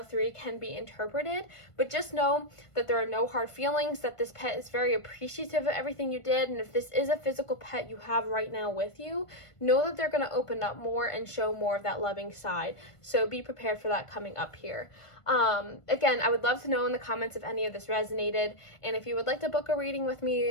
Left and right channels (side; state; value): right; late; 1.5 ms